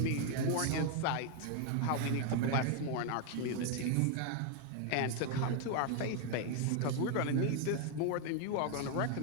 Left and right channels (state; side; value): different; both; correlation 0.00